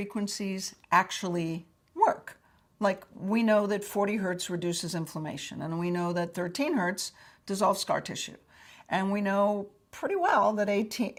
actually work? Like, we know that 40 hertz reduces inflammation, and we know that 13 hertz dissolves scar tissue. And we know pretty well that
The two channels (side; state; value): both; identical; correlation 1.00